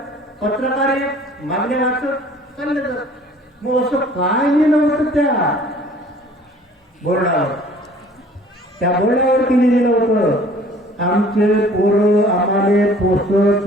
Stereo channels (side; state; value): both; normal; correlation 0.52